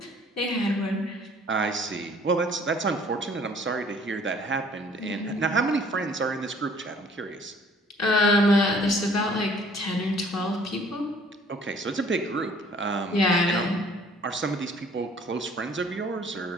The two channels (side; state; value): both; normal; correlation 0.56